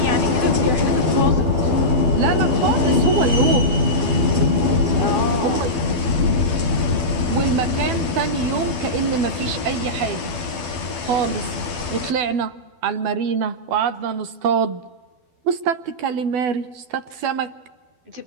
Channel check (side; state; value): left; late; 12 ms